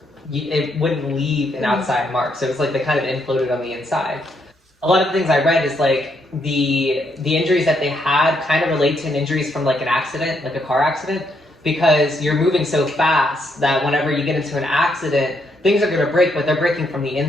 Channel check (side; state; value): both; normal; correlation 0.76